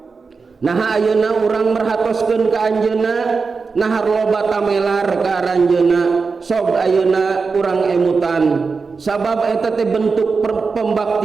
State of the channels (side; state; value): left; quieter; 4.7 dB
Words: Naha ayeuna urang merhatoskeun ka anjeunna, nahar loba tamelar ka aranjeunna. Sok ayeuna urang emutan, sabab eta teh bentuk